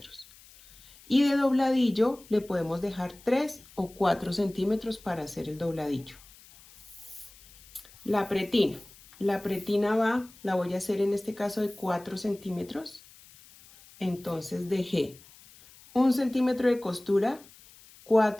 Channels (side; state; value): left; noise; hiss, 23 dB below the sound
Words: Y de dobladillo le podemos dejar 3 o 4 centímetros para hacer el dobladillo. La pretina. La pretina la voy a hacer en este caso de 4 centímetros. Entonces dejé 1 centímetro de costura,